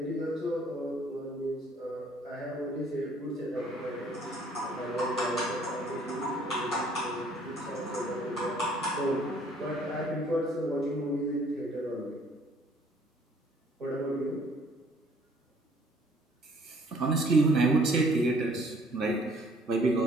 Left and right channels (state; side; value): normal; both; correlation 0.59